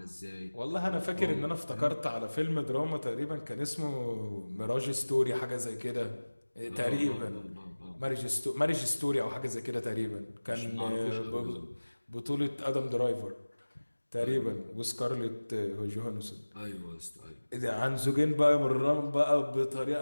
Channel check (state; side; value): inverted; both; correlation -1.00